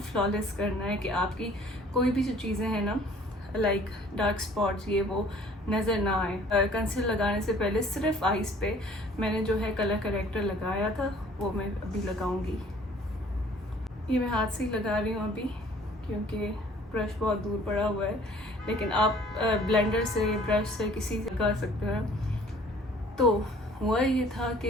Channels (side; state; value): both; normal; correlation 0.54